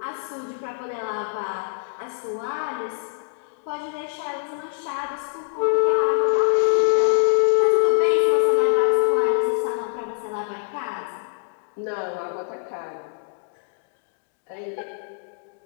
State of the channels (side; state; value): right; silent; digital silence